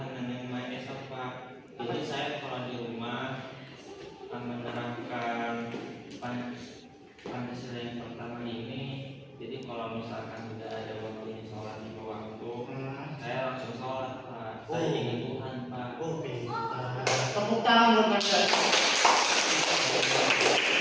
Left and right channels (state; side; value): identical; both; correlation 1.00